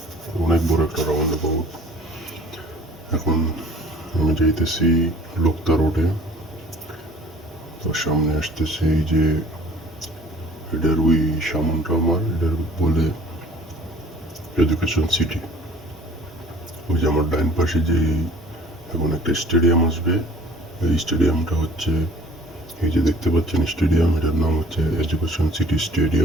অনেক বড় একটা রাউন্ড অ্যাবাউট। এখন আমি যাইতেছি লোকতা রোডে। তার সামনে আসতেছে এই যে এটার ওই সামনটা আমার এটার বলে এডুকেশন সিটি। ওই যে আমার ডাইন পাশে যে এখন একটা স্টেডিয়াম আসবে, এই স্টেডিয়ামটা হচ্ছে এই যে দেখতে পাচ্ছেন স্টেডিয়াম, এটার নাম হচ্ছে এডুকেশন সিটি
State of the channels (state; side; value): normal; both; correlation 0.50